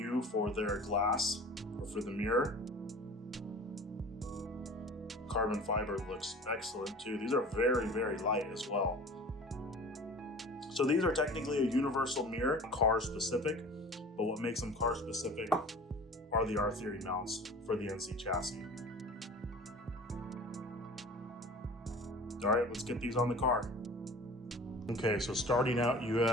for their glass or for the mirror. Carbon fiber looks excellent too. These are very, very light as well. So these are technically a universal mirror, car specific, but what makes them car specific are the R-Theory mounts for the NC chassis. All right, let's get these on the car. Okay, so starting out, you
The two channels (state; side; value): normal; both; correlation 0.41